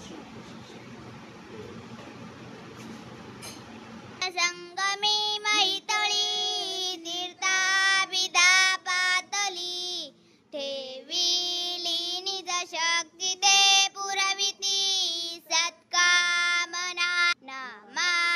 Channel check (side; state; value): both; identical; correlation 1.00